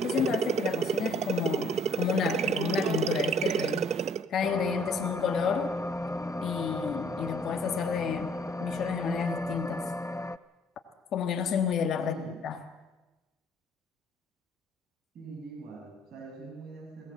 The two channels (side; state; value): both; normal; correlation 0.60